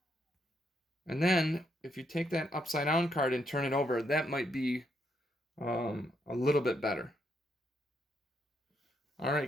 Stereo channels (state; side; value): normal; both; correlation 0.76